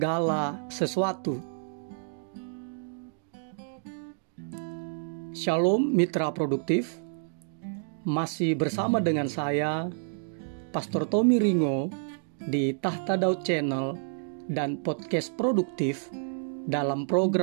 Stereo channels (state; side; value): silent; left; digital silence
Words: sesuatu. Shalom mitra produktif. Masih bersama dengan saya, Pastor Tommy Ringo, di Tahta Daud Channel dan Podcast Produktif dalam